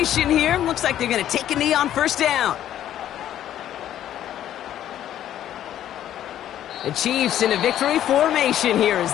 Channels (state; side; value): quieter; right; 11.5 dB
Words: here. Looks like they're going to take a knee on first down. The Chiefs in a victory formation here as